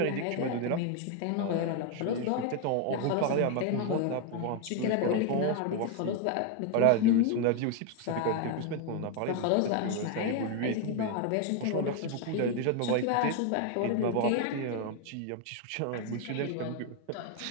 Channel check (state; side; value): different; both; correlation 0.01